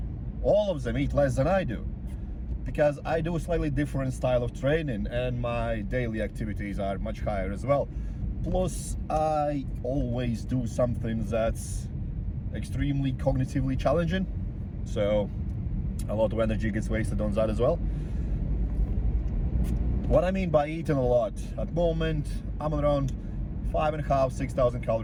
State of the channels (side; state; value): both; identical; correlation 1.00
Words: all of them eat less than I do, because I do a slightly different style of training and my daily activities are much higher as well. Plus, I always do something that's extremely cognitively challenging, so a lot of energy gets wasted on that as well. What I mean by eating a lot, at the moment I'm around 5,500 to 6,000